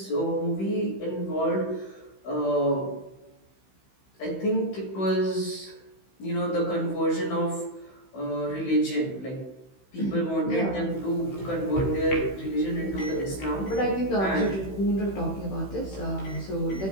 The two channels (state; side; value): late; right; 16 ms